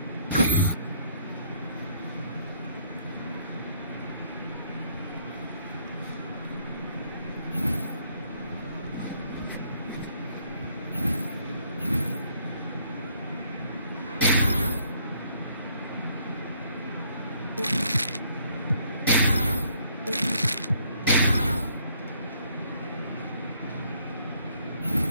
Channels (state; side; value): inverted; both; correlation -0.66